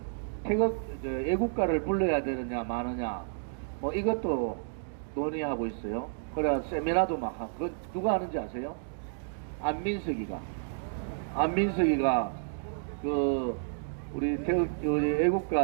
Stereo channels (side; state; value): left; silent; digital silence